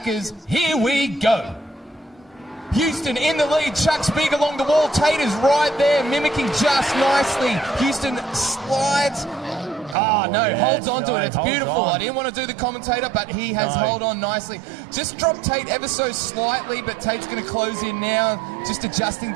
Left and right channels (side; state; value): left; drops out; at 10.0 s